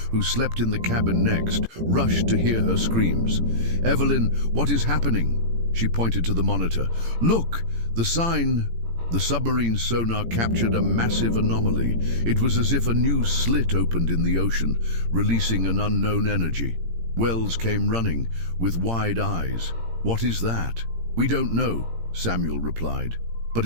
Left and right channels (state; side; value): late; left; 17 ms